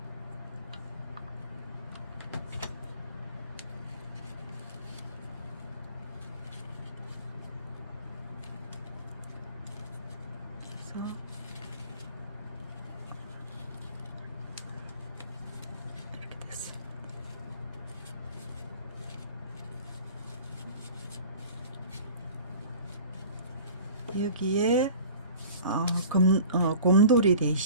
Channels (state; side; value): inverted; both; correlation -0.43